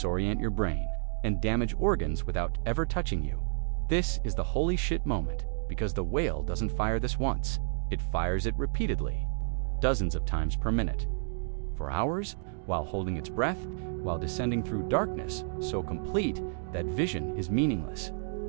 your brain, and damage organs without ever touching you. This is the holy shit moment, because the whale doesn't fire this once. It fires it repeatedly, dozens of times per minute. For hours, while holding its breath, while descending through darkness so complete that vision is meaningless.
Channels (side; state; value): left; silent; digital silence